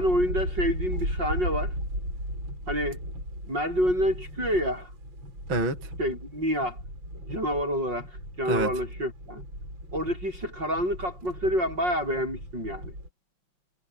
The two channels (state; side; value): late; left; 5.5 ms